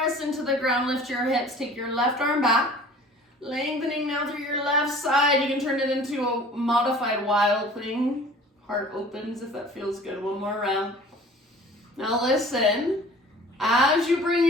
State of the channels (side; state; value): both; normal; correlation 0.47